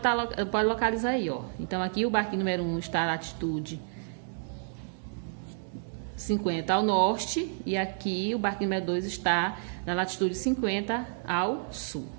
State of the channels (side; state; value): left; silent; 58 dB below the other